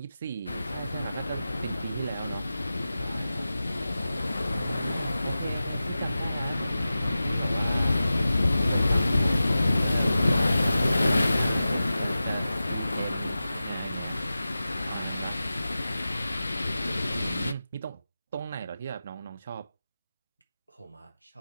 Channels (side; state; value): both; inverted; correlation -0.94